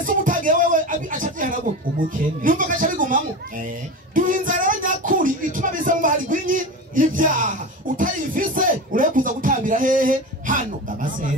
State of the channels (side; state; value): both; normal; correlation 0.26